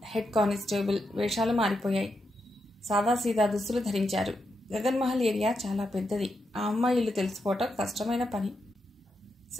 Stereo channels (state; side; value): normal; both; correlation 0.84